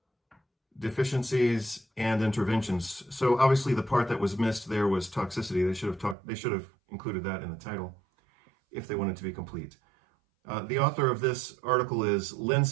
deficiencies, and interventions. So obviously the part that was missed there was toxicity. They should have included that in the title if they wanted to be complete. The author of this article is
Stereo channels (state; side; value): drops out; left; at 6.2 s